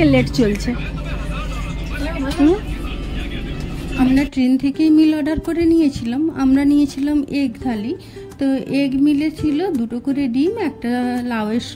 লেট চলছে। আমরা ট্রেন থেকেই মিল অর্ডার করে নিয়েছিলাম। আমরা নিয়েছিলাম এগ থালি। তো এগ মিলে ছিল 2টো করে ডিম, একটা লাউয়ের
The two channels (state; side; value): identical; both; correlation 1.00